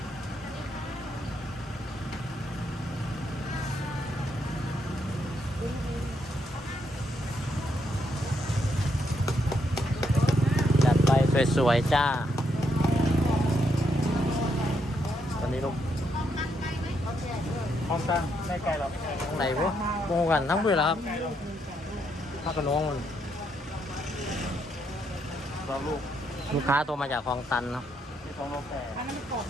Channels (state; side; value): normal; both; correlation 0.77